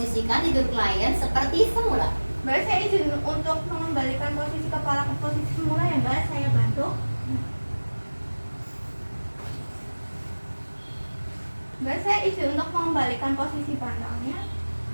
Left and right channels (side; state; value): both; inverted; correlation -1.00